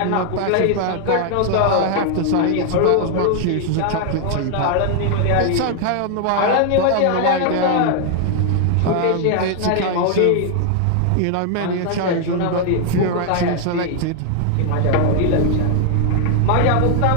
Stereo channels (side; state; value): both; different; correlation 0.00